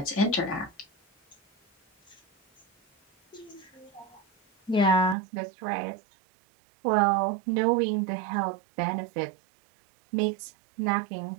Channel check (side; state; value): left; drops out; at 5.2 s